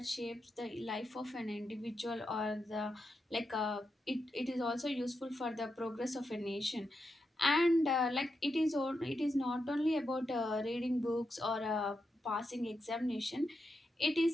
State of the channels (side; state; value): both; normal; correlation 0.86